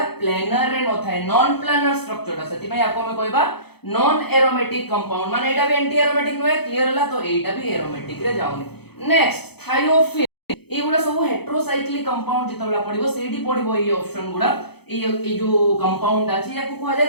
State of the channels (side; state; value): right; late; 0.98 ms